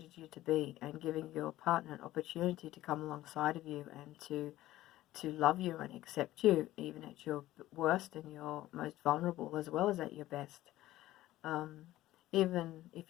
you to be, and giving your partner an opportunity to come alongside of you and to love you and accept you even at your worst and your most vulnerable as well as at your best. Even if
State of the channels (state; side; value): quieter; right; 15.5 dB